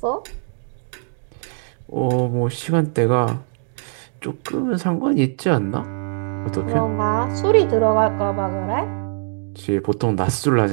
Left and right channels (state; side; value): silent; left; digital silence